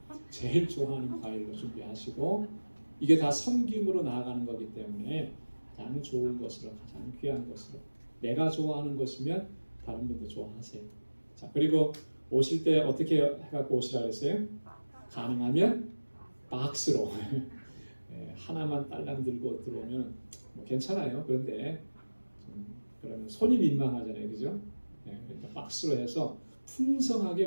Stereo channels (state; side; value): inverted; both; correlation -1.00